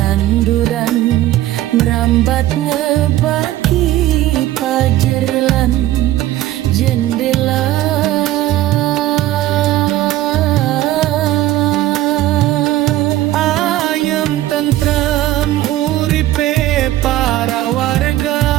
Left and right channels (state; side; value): quieter; left; 14.6 dB